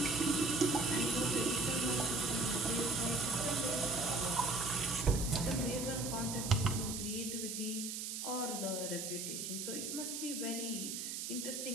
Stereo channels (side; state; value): right; noise; hiss, 4 dB below the sound